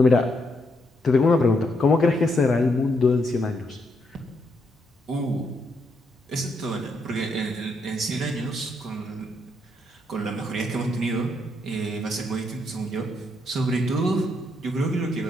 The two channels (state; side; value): normal; both; correlation 0.77